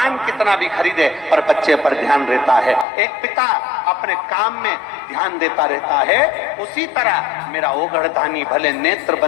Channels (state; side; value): drops out; right; at 2.9 s